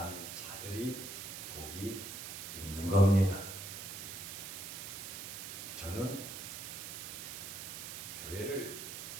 자들이 복이 있는 겁니다. 저는 교회를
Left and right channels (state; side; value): noise; right; hiss, 7 dB below the sound